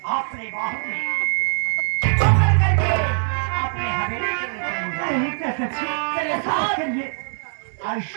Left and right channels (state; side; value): silent; left; 59 dB below the other